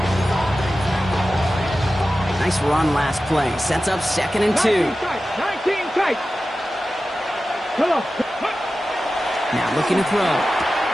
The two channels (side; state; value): both; normal; correlation 0.94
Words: Nice run last play. Sets up 2nd and 2. 19 tight. Come on. Now looking to throw.